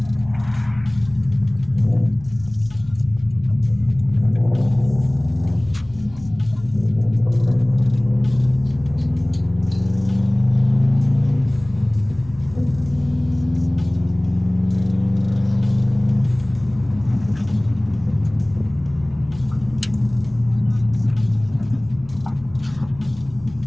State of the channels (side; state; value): left; noise; hum, 20 dB below the sound